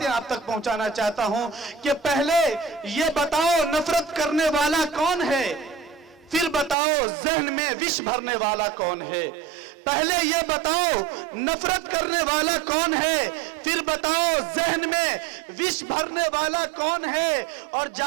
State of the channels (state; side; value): drops out; left; at 6.8 s